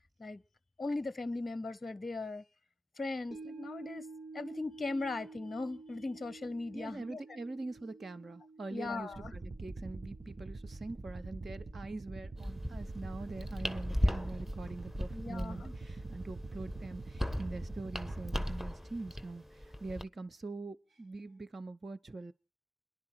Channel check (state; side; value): normal; both; correlation 0.94